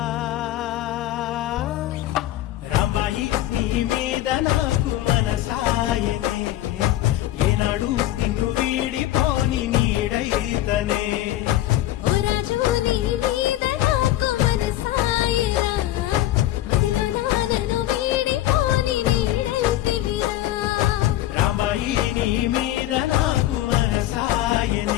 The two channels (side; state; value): right; quieter; 14.3 dB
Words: రాంబాయి నీ మీద నాకు మనసాయనే ఏనాడు నిన్ను వీడిపోని నీడైతనే నీ మీద నాకు